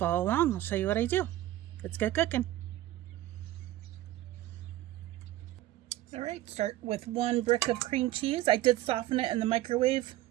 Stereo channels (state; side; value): quieter; left; 15.1 dB